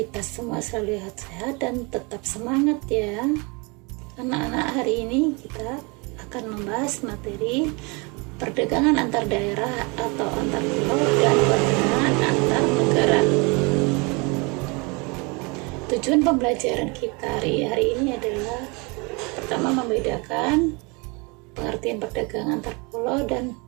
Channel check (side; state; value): left; quieter; 29.5 dB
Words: semua selalu sehat dan tetap semangat ya. Anak-anak, hari ini kita akan membahas materi perdagangan antar daerah atau antar pulau dan perdagangan antar negara. Tujuan pembelajaran kita hari ini adalah pertama, membedakan pengertian perdagangan antar pulau dan